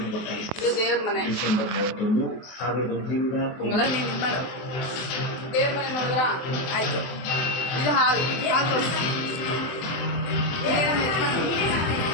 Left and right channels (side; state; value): right; late; 23 ms